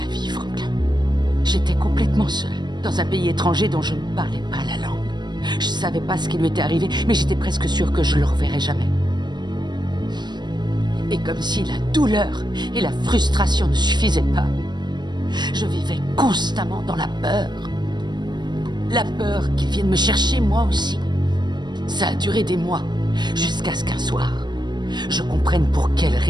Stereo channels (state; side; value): late; left; 0.21 ms